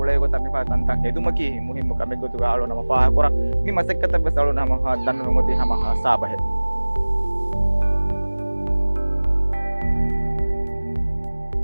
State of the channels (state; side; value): inverted; both; correlation -1.00